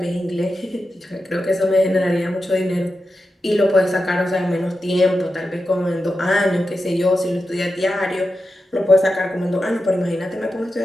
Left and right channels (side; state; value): both; normal; correlation 0.90